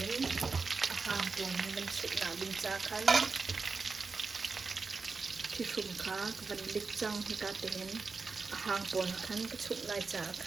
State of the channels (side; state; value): left; quieter; 4.4 dB